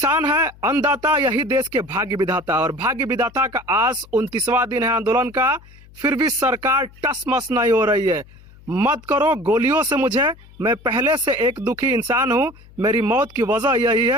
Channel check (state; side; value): noise; left; hum, 23 dB below the sound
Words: है अन्नदाता, यही देश के भाग्य विधाता, और भाग्य विधाता का आज 29वां दिन है आंदोलन का, फिर भी सरकार टस मस नहीं हो रही है। मत करो गोलियों से मुझे, मैं पहले से एक दुखी इंसान हूं, मेरी मौत की वजह यही